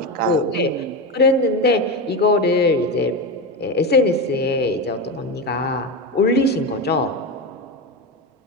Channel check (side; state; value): both; normal; correlation 0.17